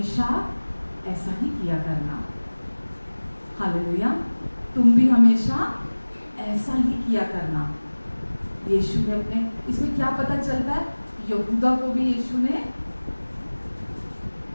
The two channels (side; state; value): both; inverted; correlation -1.00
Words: ऐसा ही किया करना। हालेलुया, तुम भी हमेशा ऐसा ही किया करना। यीशु ने अपने, इसमें क्या पता चलता है? यहूदा को भी यीशु ने